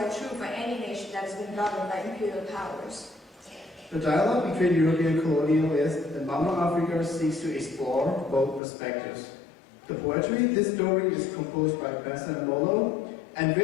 true for any nation that has been governed by imperial powers." The dialogue between European colonialists and Mama Africa seeks to explore both perspectives. The poetry, this story, is composed by Bessa Molo, and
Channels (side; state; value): right; drops out; at 8.6 s